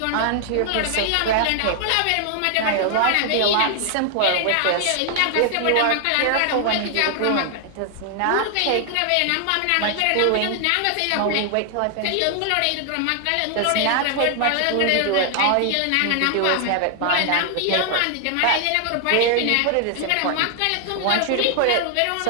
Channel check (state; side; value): different; both; correlation 0.00